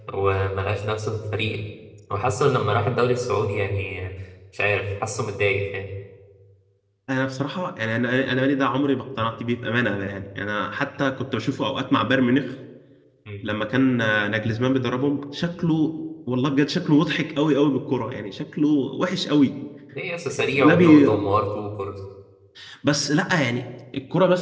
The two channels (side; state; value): both; identical; correlation 1.00